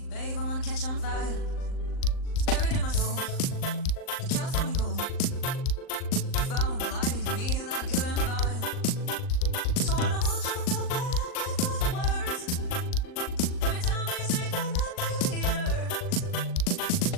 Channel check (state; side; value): late; right; 39 ms